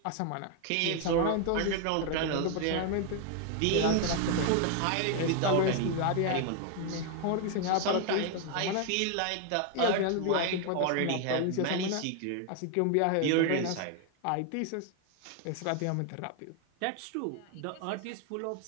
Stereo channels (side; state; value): both; different; correlation 0.00